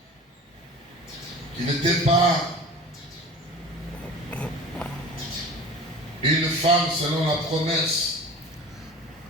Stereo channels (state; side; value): normal; both; correlation 0.39